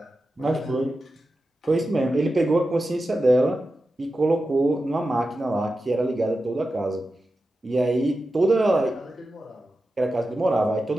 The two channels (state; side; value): normal; both; correlation 0.92